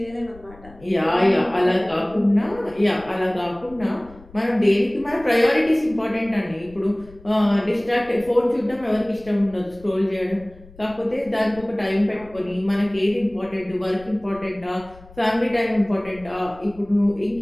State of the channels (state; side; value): noise; left; rumble, 22 dB below the sound